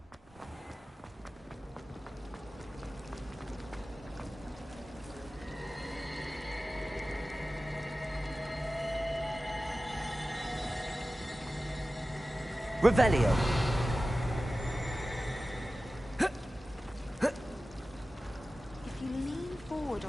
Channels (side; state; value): both; normal; correlation 0.95